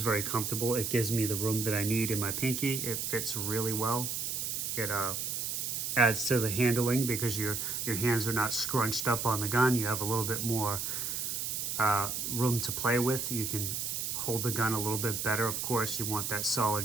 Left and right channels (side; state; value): right; noise; hiss, 2 dB below the sound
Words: very comfortable. It gives me the room that I need in my pinky. It fits really well. It adds to the handling because your hands are not scrunched up on the gun. You have a little bit more room to play with. You can hold the gun a little bit better. Of course, you want that